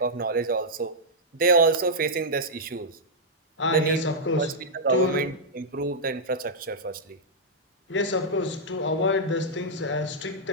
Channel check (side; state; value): both; normal; correlation -0.08